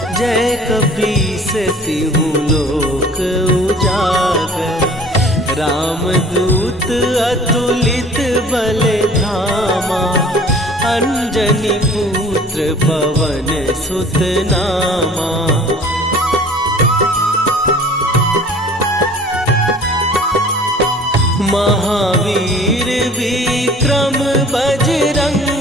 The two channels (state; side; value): normal; both; correlation 0.48